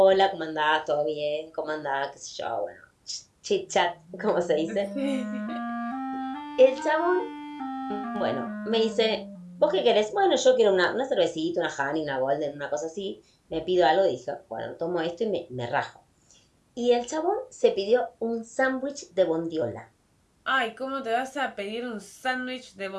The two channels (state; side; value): identical; both; correlation 1.00